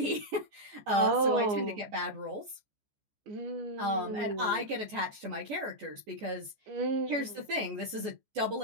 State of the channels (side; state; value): left; late; 14 ms